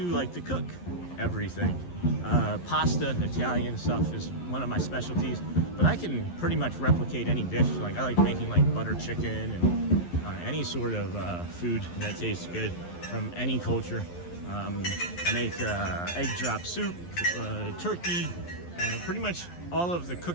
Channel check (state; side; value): late; right; 11 ms